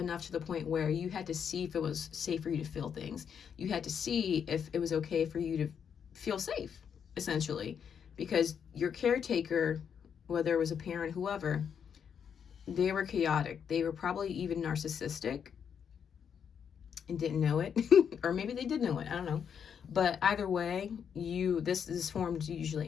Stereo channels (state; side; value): quieter; right; 7.6 dB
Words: to the point where you had to see if it was safe for you to feel things. You had to see if it was okay for you to feel safe, essentially, because your caretaker, whether it was a parent, whoever, they were chaotic. They were probably even narcissistic and didn't know it. Or maybe they did know it, I don't know. But either way, this is formed